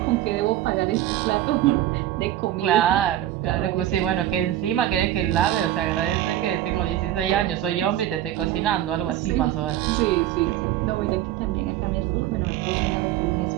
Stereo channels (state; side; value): quieter; left; 13.0 dB